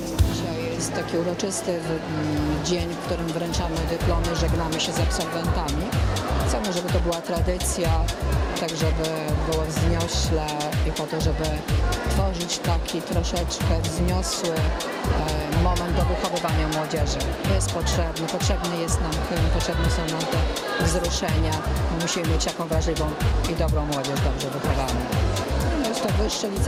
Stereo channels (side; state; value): both; identical; correlation 1.00